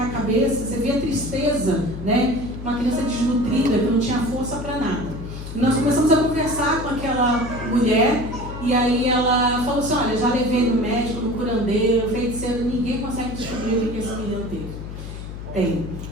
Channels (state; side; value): noise; left; hum, 10 dB below the sound